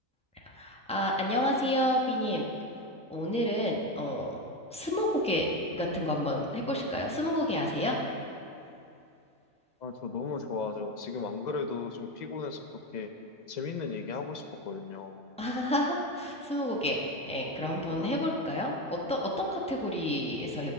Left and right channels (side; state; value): both; normal; correlation 0.17